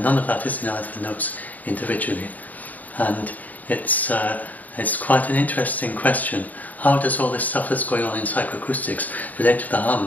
none of that is in either of the notes individually. And it's quite an interesting question. How does all this stuff that's going on in psychoacoustics relate to the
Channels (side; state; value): right; late; 0.078 ms